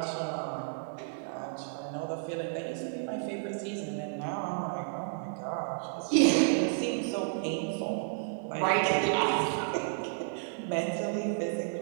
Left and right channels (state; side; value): silent; left; digital silence